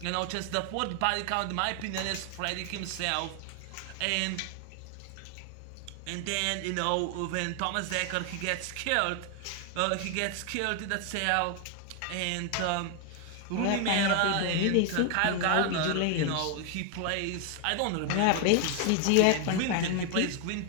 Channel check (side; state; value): both; different; correlation 0.00